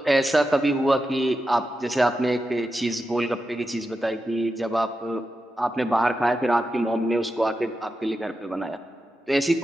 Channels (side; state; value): both; normal; correlation 0.89